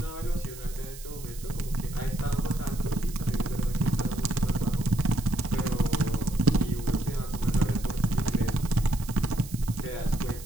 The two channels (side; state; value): right; noise; hiss, 16 dB below the sound